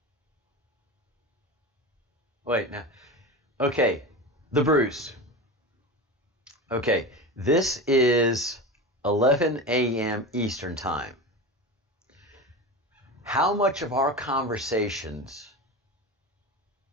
Wait, now. Okay, the Bruce. Okay, this is 11 a.m. Eastern Time. How much of our conversations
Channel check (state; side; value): normal; both; correlation 0.26